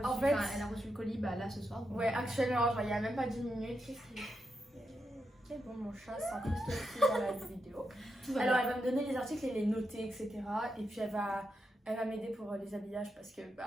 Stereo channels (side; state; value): both; normal; correlation 0.85